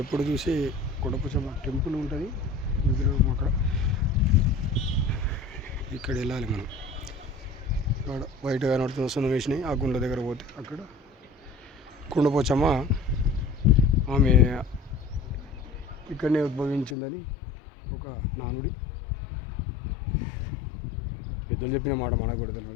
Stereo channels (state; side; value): drops out; right; at 16.9 s